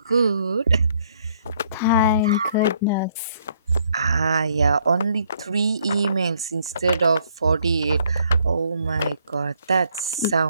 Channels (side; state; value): both; inverted; correlation -0.67